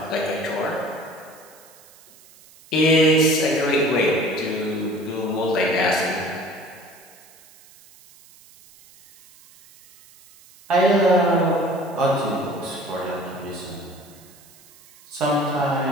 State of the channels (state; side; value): noise; right; hiss, 25 dB below the sound